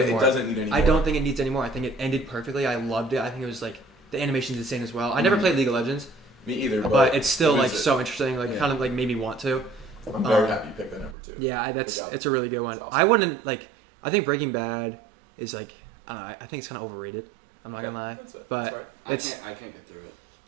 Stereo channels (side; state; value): left; drops out; at 11.2 s